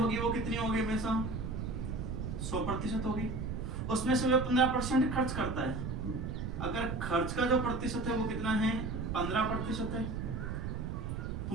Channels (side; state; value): right; noise; rumble, 4 dB below the sound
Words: वो कितनी होगी? हमेशा 100% होगी। उसमें से वो 15% खर्च करता है। अगर खर्च का जो प्रतिशत है वो कितना है? 15% है। तो